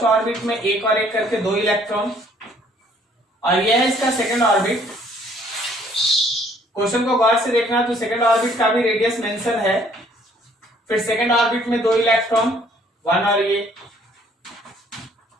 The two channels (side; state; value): both; normal; correlation 0.61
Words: ऑर्बिट में एक और एक करके 2 इलेक्ट्रॉन। और यह है इसका सेकंड ऑर्बिट। क्वेश्चन को गौर से देखना, तो सेकंड ऑर्बिट का भी रेडियस मेंशन है। फिर सेकंड ऑर्बिट में 2 इलेक्ट्रॉन, 1 और ये।